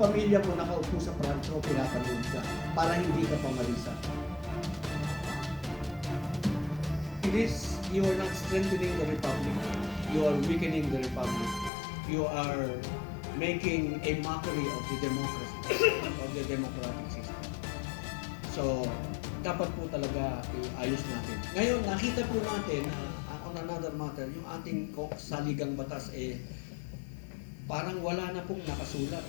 mo nakaupo sa prancho, pinapanood ka para hindi ka pamarisa. It is, you are not strengthening the republic. You are weakening the republic. You are making a mockery of the democracy, of the democratic system. So, dapat po talaga iayos natin. Ngayon, nakita po natin na on another matter, yung ating saligang batas parang wala na pong nakasulat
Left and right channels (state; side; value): drops out; right; at 11.7 s